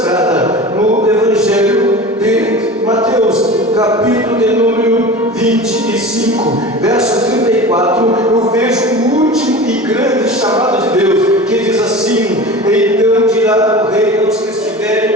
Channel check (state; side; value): normal; both; correlation 0.34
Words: no Evangelho de Mateus, capítulo de número 25, verso 34, eu vejo o último e grande chamado de Deus, que diz assim: então dirá o rei aos que